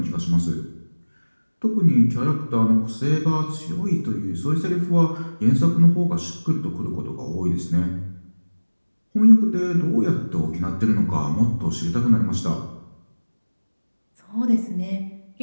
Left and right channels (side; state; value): both; inverted; correlation -1.00